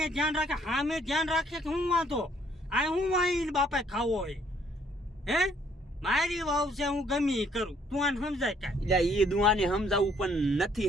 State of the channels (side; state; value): both; normal; correlation 0.65